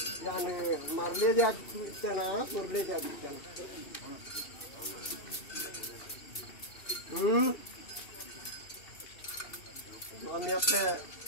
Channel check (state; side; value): late; right; 2.7 ms